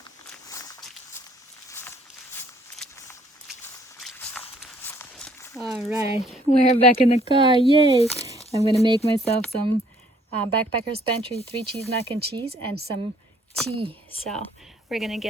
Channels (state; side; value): normal; both; correlation 0.62